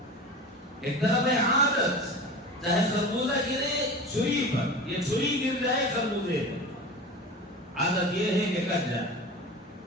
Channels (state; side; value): normal; both; correlation 0.32